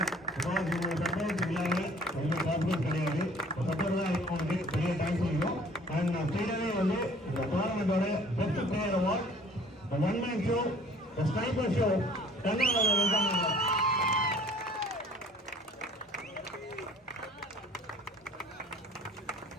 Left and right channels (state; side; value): normal; both; correlation 0.53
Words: சப்போர்ட் இல்லாமல் ரொம்ப பாப்புலர் கிடையாது. சப்போர்ட் தான் இருக்கும். பெரிய தேங்க்ஸ் சொல்லிடும். அண்ட் நான் ஸ்டேடியமே வந்து இந்த டோர்னமெண்டோட best player award one man show sniper show கர்நாடகாவில்